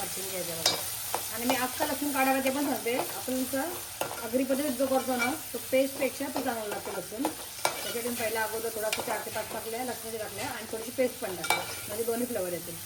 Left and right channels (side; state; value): both; identical; correlation 1.00